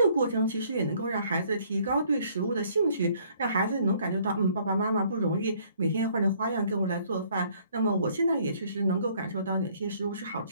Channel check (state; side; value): inverted; both; correlation -0.62